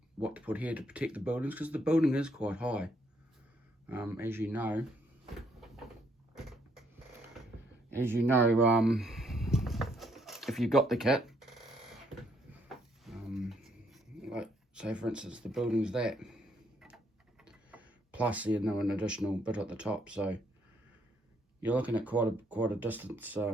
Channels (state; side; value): normal; both; correlation 0.71